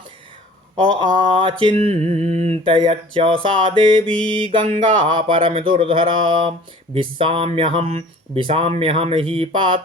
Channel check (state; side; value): normal; both; correlation 0.47